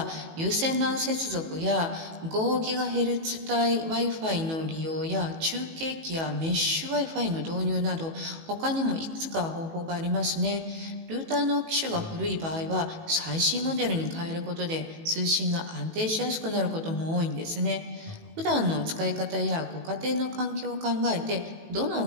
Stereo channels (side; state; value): left; late; 18 ms